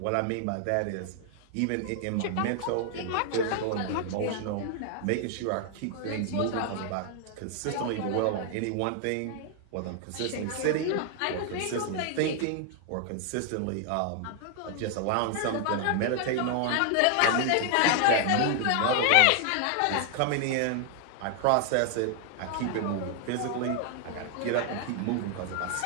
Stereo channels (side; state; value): both; different; correlation 0.00